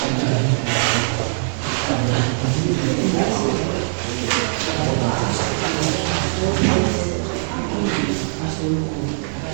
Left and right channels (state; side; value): silent; left; digital silence